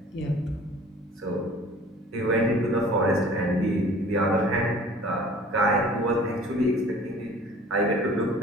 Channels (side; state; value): both; normal; correlation 0.47